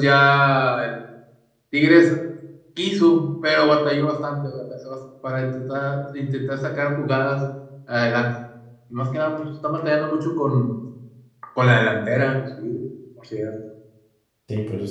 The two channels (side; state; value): both; identical; correlation 1.00